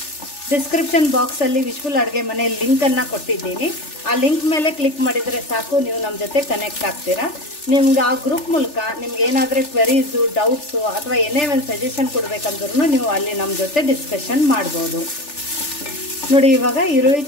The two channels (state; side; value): late; right; 3.4 ms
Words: ಡಿಸ್ಕ್ರಿಪ್ಷನ್ ಬಾಕ್ಸಲ್ಲಿ ವಿಶ್ಫುಲ್ ಅಡುಗೆ ಮನೆ ಲಿಂಕನ್ನು ಕೊಟ್ಟಿದ್ದೀನಿ. ಆ ಲಿಂಕ್ ಮೇಲೆ ಕ್ಲಿಕ್ ಮಾಡಿದರೆ ಸಾಕು, ನೀವು ನಮ್ಮ ಜೊತೆ ಕನೆಕ್ಟ್ ಆಗ್ತೀರಾ. ನಿಮ್ಗೆ ಆ ಗ್ರೂಪ್ ಮೂಲಕ ನಿಮ್ಗೆ ಏನಾದರೂ ಕ್ವೆರೀಸು, ಡೌಟ್ಸು ಅಥವಾ ಏನೇ ಒಂದು ಸಜೆಷನ್ ಕೊಡಬೇಕಂದ್ರೂ ನೀವು ಅಲ್ಲಿ ನಮ್ಮ ಜೊತೆ ಡಿಸ್ಕಷನ್ ಮಾಡ್ಬೋದು. ನೋಡಿ ಇವಾಗ ಈರುಳ್ಳಿ